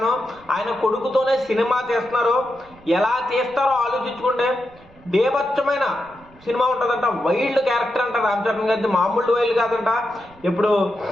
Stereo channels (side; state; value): right; noise; rumble, 26 dB below the sound